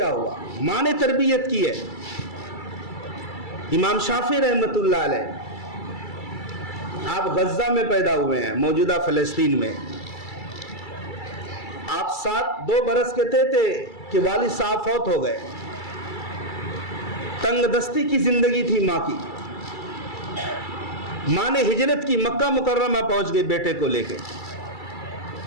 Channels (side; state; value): right; late; 2.3 ms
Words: ہوا؟ ماں نے تربیت کی ہے. امام شافعی رحمت اللہ علیہ، آپ غزہ میں پیدا ہوئے ہیں، موجودہ فلسطین میں. آپ 2 برس کے تھے کہ والد صاحب فوت ہو گئے. تنگ دستی کی زندگی تھی ماں کی. ماں نے ہجرت کی، مکہ مکرمہ پہنچ گئی بیٹے کو لے کے،